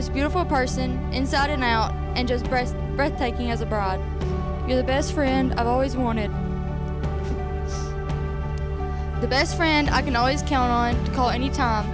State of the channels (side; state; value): both; identical; correlation 1.00